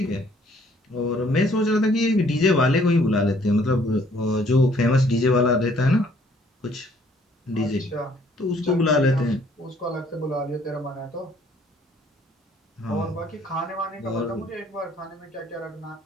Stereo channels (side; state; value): both; normal; correlation 0.62